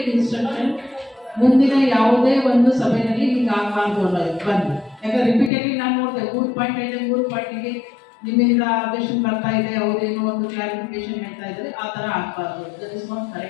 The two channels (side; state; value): right; drops out; at 5.5 s